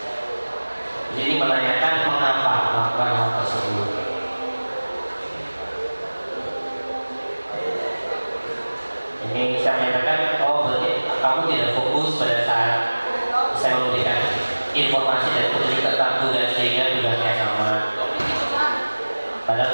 Jadi menanyakan mengapa melakukan hal tersebut. Ini saya menyatakan, oh berarti kamu tidak fokus pada saat saya memberikan informasi dan petunjuk tentang tugas sehingga tugasnya sama.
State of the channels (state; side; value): inverted; both; correlation -1.00